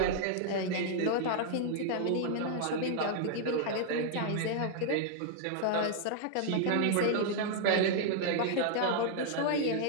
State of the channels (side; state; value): both; different; correlation -0.01